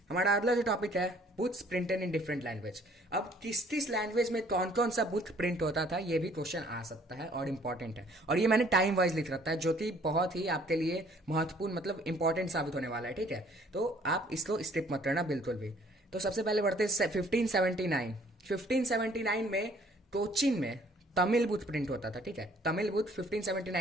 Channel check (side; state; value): both; normal; correlation 0.59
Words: हमारा अगला जो टॉपिक है, books printed in different language. अब किस लैंग्वेज में कौन कौन सा बुक प्रिंट होता था, ये भी क्वेश्चन आ सकता है और इंपॉर्टेंट है। और ये मैंने टाइम वाइज लिख रखा है, जो कि बहुत ही आपके लिए महत्वपूर्ण मतलब इंपॉर्टेंट साबित होने वाला है, ठीक है। तो आप इसको स्किप मत करना बिल्कुल भी। तो सबसे पहले बढ़ते हैं 1579 में कोचीन में तमिल बुक प्रिंट होता था, ठीक है। तमिल बुक